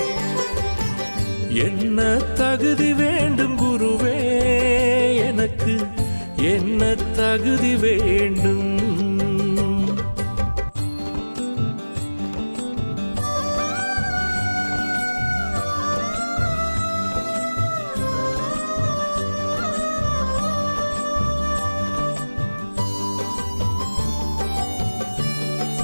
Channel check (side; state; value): both; inverted; correlation -1.00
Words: என்ன தகுதி வேண்டும் குருவே எனக்கு என்ன தகுதி வேண்டும்?